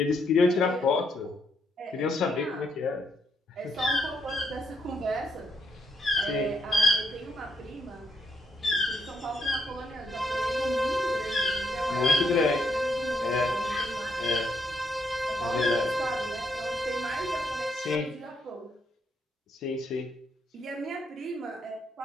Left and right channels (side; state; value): both; normal; correlation 0.76